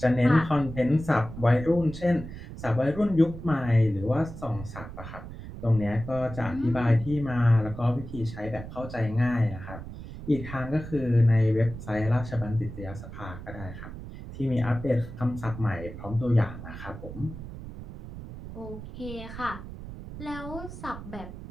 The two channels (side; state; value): right; noise; rumble, 11 dB below the sound